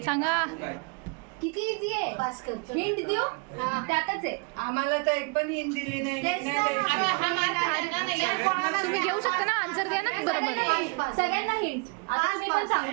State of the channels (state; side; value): quieter; left; 32.8 dB